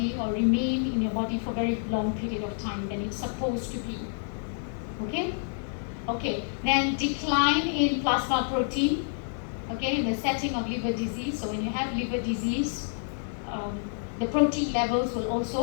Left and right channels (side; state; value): right; silent; digital silence